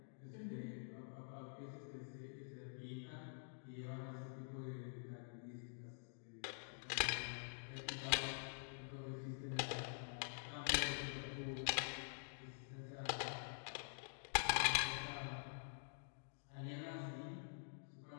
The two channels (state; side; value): silent; right; digital silence